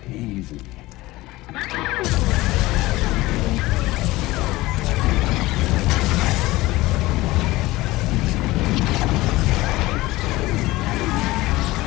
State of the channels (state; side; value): quieter; right; 19.0 dB